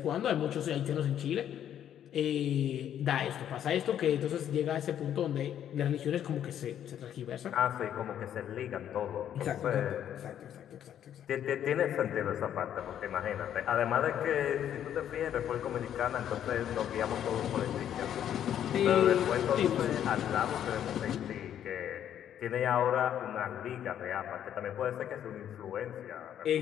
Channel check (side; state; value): right; quieter; 10.2 dB